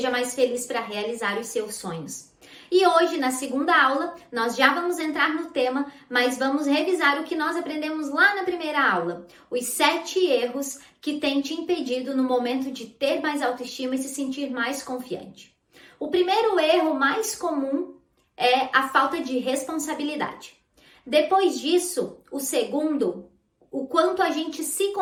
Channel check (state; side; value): identical; both; correlation 1.00